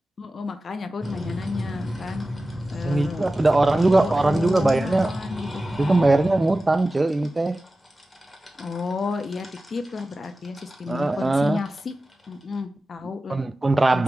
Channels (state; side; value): normal; both; correlation 0.95